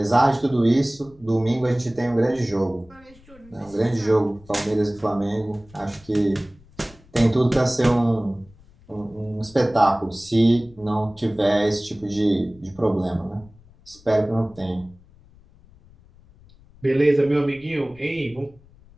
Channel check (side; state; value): left; noise; rumble, 26 dB below the sound